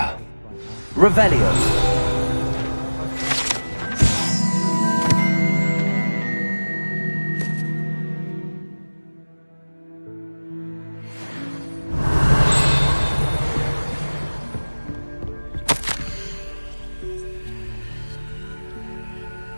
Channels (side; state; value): both; inverted; correlation -1.00